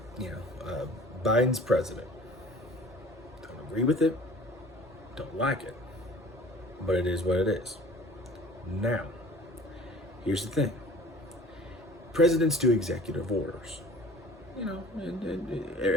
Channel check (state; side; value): normal; both; correlation 0.46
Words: Biden's president. Don't agree with it. Don't like it, but it is what it is. Now, here's the thing: presidents do executive orders.